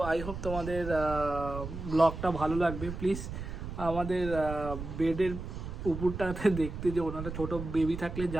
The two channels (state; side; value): noise; right; rumble, 8 dB below the sound